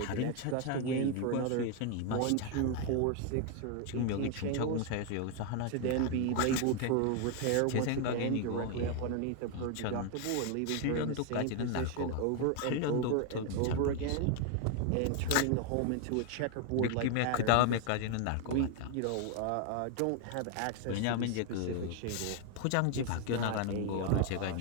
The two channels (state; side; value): different; both; correlation 0.01